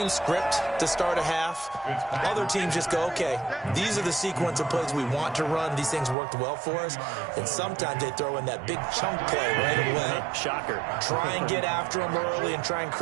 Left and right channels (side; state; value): left; drops out; at 6.2 s